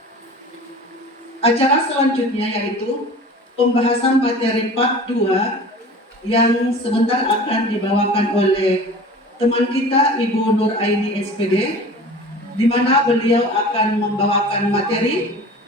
Acara selanjutnya yaitu pembahasan materi part 2 yang sebentar akan dibawakan oleh teman kita Ibu Nur Aini SPD, di mana beliau akan membawakan materi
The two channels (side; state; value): both; normal; correlation 0.40